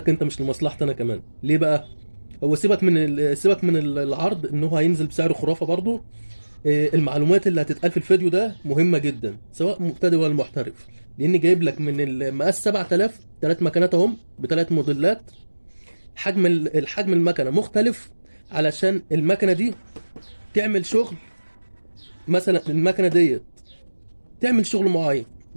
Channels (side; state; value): both; inverted; correlation -1.00